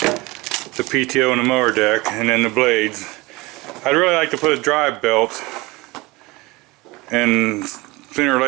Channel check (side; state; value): left; quieter; 22.7 dB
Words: PTO and the mower deck, and then the blades. I'd really like to put a drive belt, and sooner or